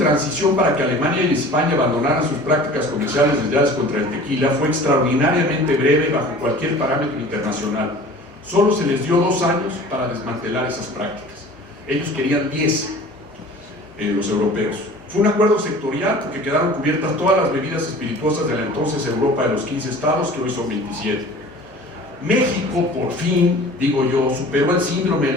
para que Alemania y España abandonaran sus prácticas comerciales desleales contra el tequila fue extraordinariamente breve bajo cualquier parámetro internacional. Solo se les dio 2 años para desmantelar esas prácticas. Ellos querían 10, los europeos. Fue un acuerdo sectorial porque quedaron cubiertas todas las bebidas espirituosas de la entonces Europa de los 15 estados, que hoy son 27. México, por fin, digo yo, superó el síndrome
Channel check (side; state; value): both; normal; correlation 0.44